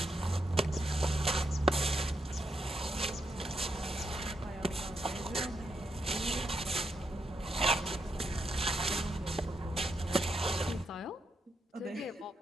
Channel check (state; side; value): normal; both; correlation 0.81